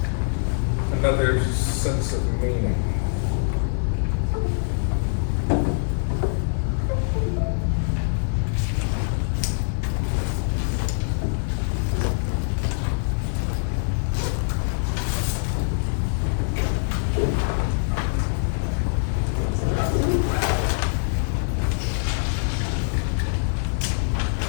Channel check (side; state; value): right; silent; digital silence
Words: another sense of meaning.